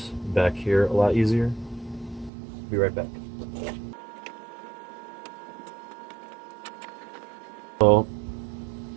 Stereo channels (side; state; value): left; drops out; at 2.3 s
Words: back here a lot easier. Be right back. So,